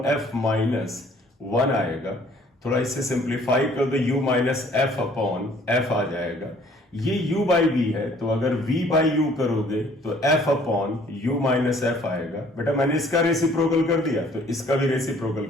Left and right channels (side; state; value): both; normal; correlation 0.58